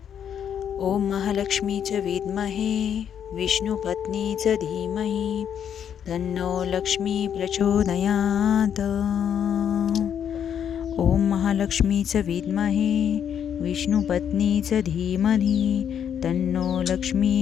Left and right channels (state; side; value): quieter; right; 8.7 dB